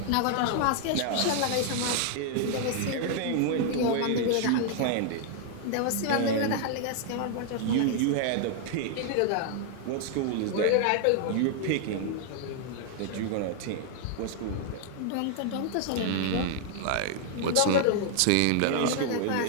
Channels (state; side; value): different; both; correlation 0.00